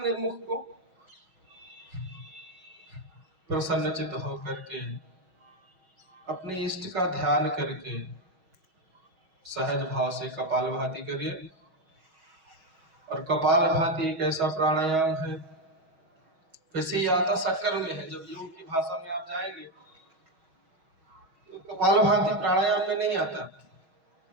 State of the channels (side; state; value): left; late; 6.3 ms